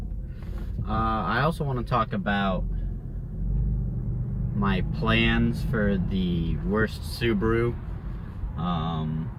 I also want to talk about my plans for the worst Subaru.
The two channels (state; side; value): identical; both; correlation 1.00